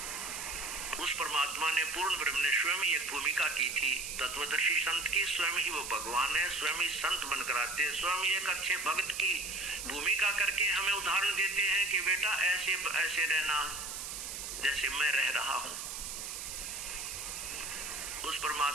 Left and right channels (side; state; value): right; noise; hiss, 6 dB below the sound